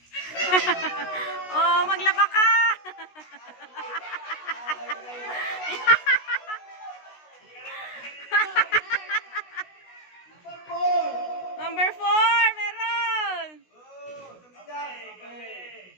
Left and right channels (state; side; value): late; right; 16 ms